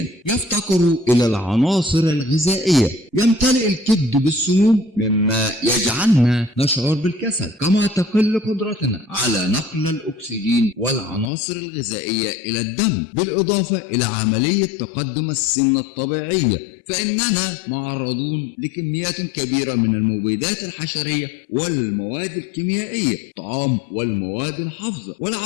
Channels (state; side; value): drops out; right; at 11.3 s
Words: يفتقر إلى العناصر الغذائية. يمتلئ الكبد بالسموم مما يجعلنا نشعر بالكسل، كما تقل قدرتنا على نقل الأكسجين والعناصر الغذائية إلى الدم، بالإضافة إلى عملية تقدم السن الطبيعية. فإننا معرضون لكميات كبيرة من المبيدات الحشرية والمواد الكيميائية، الطعام والمواد الحافظة